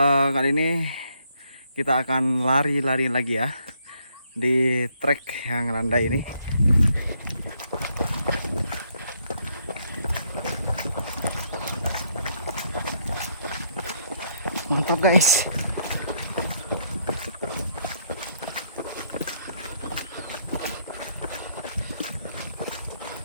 kali ini kita akan lari-lari lagi ya di trek yang landai ini. Mantap guys.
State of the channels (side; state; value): both; inverted; correlation -0.72